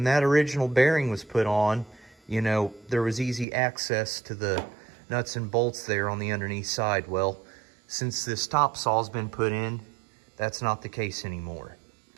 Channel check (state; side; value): drops out; left; at 3.5 s